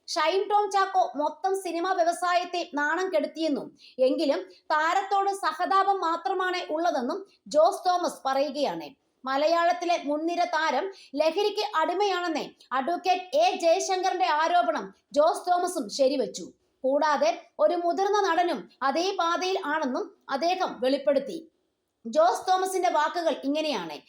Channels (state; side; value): identical; both; correlation 1.00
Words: ഷൈൻ ടോം ചാക്കോ മൊത്തം സിനിമാ വ്യവസായത്തെ നാണം കെടുത്തിയെന്നും എങ്കിലും താരത്തോട് സഹതാപം മാത്രമാണ് ഉള്ളതെന്നും ജോസ് തോമസ് പറയുകയാണ്. മലയാളത്തിലെ മുൻനിര താരം ലഹരിക്ക് അടിമയാണെന്ന് അഡ്വക്കേറ്റ് എ ജയശങ്കറിന്റെ ആരോപണം ജോസ് തോമസും ശരിവച്ചു. കൂടാതെ ഒരു മുതിർന്ന നടനും അതേ പാതയിൽ ആണെന്നും അദ്ദേഹം വെളിപ്പെടുത്തി. ജോസ് തോമസിന്റെ വാക്കുകൾ ഇങ്ങനെയാണ്: